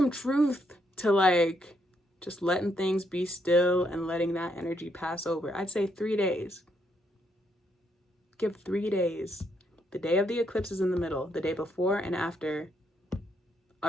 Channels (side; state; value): both; normal; correlation 0.75